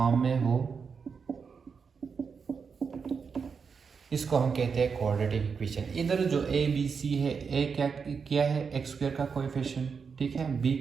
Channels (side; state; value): left; quieter; 5.8 dB